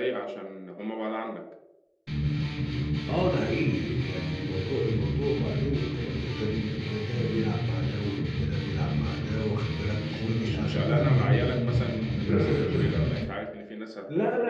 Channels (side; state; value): both; identical; correlation 1.00